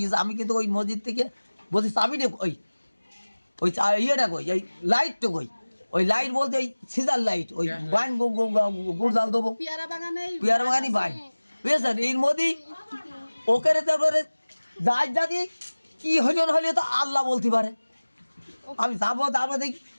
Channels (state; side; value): inverted; both; correlation -1.00